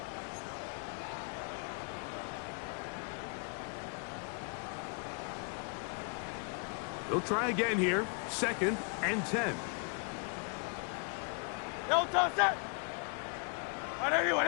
They'll try again here. 2nd and 10. No touch that. On anyone,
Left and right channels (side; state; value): right; quieter; 38.9 dB